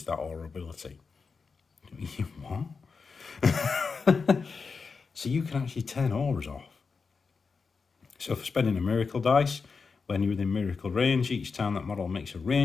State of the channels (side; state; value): right; quieter; 4.9 dB